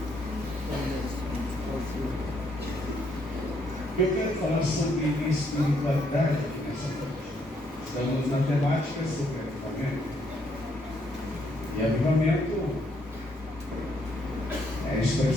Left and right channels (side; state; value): both; normal; correlation 0.72